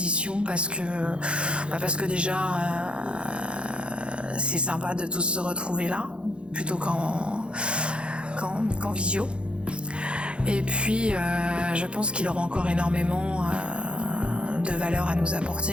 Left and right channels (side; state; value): left; late; 0.057 ms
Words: parce que déjà c'est sympa de tous se retrouver là plutôt qu'en visio. Et puis je pense qu'il aura encore énormément de valeur à nous